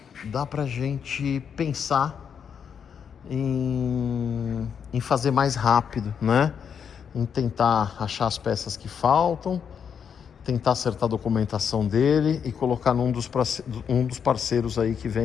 pensar em fazer mais rápido, né? Em tentar achar as peças que faltam, tentar acertar a documentação dele e colocar num dos parceiros aí que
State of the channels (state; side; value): quieter; right; 7.3 dB